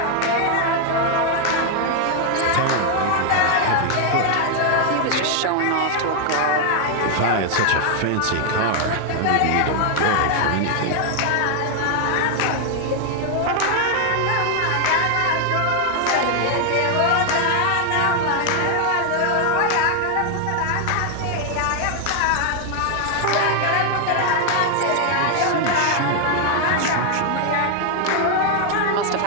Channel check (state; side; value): different; both; correlation 0.00